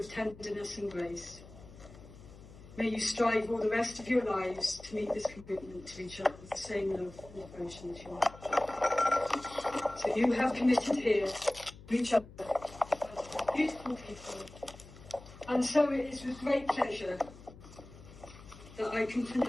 tenderness and grace. May you strive all the rest of your lives to meet this commitment to each other with the same love and devotion as you have. So you have committed here to each other as beautiful people. And so it is with great pleasure that I can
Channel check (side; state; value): left; noise; hum, 19 dB below the sound